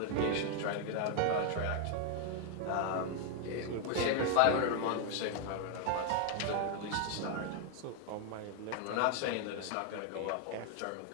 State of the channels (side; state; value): both; different; correlation 0.00